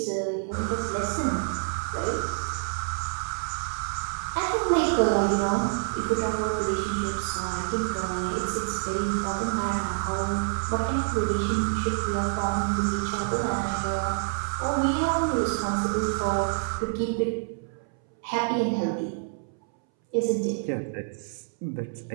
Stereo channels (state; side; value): silent; left; 60 dB below the other